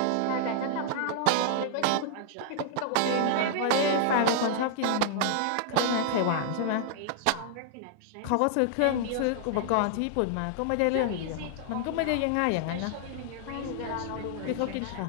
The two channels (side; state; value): both; different; correlation -0.01